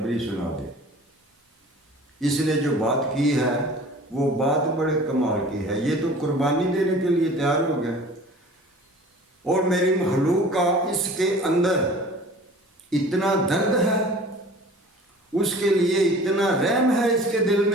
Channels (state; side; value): normal; both; correlation 0.44